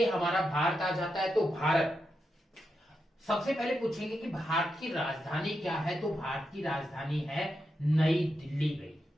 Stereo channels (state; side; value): normal; both; correlation 0.86